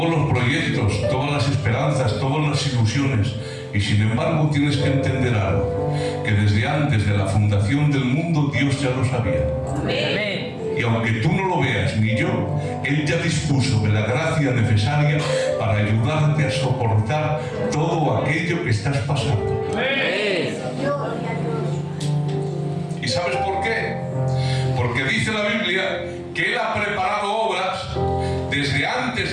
los proyectos, todas las esperanzas, todas las ilusiones, y sin embargo tienes que entender algo, que desde antes de la fundación del mundo Dios ya lo sabía. Amén. Y aunque tú no lo veas ni yo, Él ya dispuso de la gracia necesaria para ayudarte a soportar todo aquello que estás pasando. Amén. ¿Y sabes por qué? Porque dice la Biblia que Él ha preparado obras desde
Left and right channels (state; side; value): identical; both; correlation 1.00